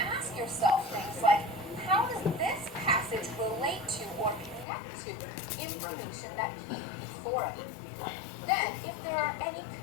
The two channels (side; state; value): right; drops out; at 4.7 s